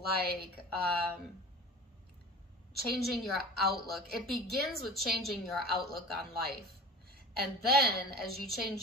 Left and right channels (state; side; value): normal; both; correlation 0.38